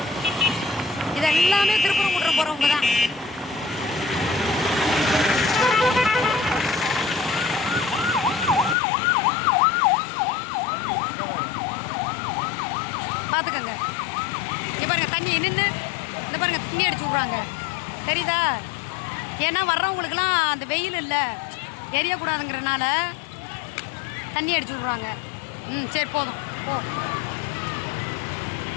இது எல்லாமே திருப்பரங்குன்றம் போகிறவங்க தான். பார்த்துக்கங்க. இங்கே பாருங்க தண்ணி நின்று இந்த பாருங்க தண்ணி அடிச்சு விட்றாங்க தெரியுதா? ஏன்னா வர்றவங்களுக்குலாம் அந்த வெயில் இல்லை எரியக்கூடாதுங்கிறனால தண்ணி அடிச்சு விட்றாங்க. சரி போதும் போ.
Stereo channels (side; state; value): right; drops out; at 8.8 s